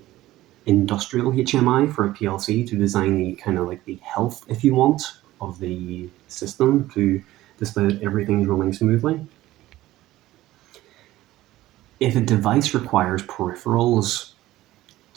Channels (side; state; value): left; quieter; 16.0 dB